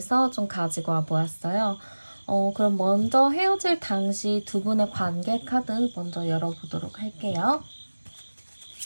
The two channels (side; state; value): both; inverted; correlation -1.00